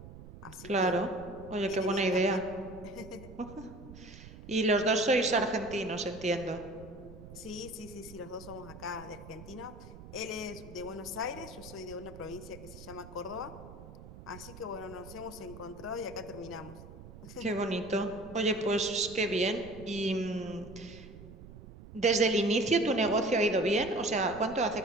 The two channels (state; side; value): noise; right; rumble, 16 dB below the sound